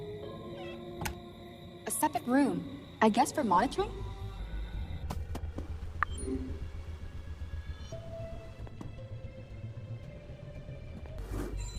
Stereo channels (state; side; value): identical; both; correlation 1.00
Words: A separate room. I guess for monitoring?